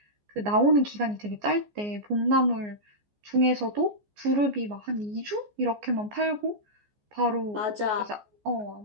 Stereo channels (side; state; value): left; late; 14 ms